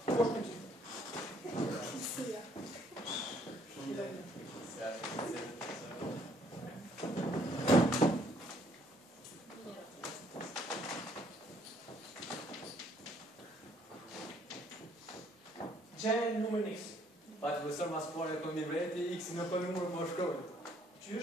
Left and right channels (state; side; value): normal; both; correlation 0.65